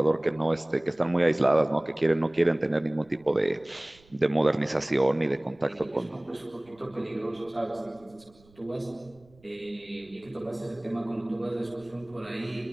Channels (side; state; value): right; noise; rumble, 29 dB below the sound